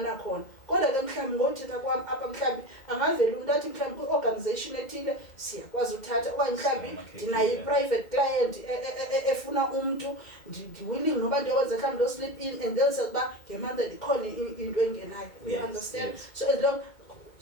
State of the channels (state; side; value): late; right; 2.1 ms